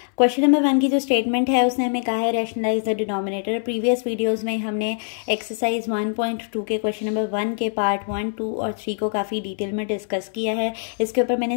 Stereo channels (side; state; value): right; silent; 63 dB below the other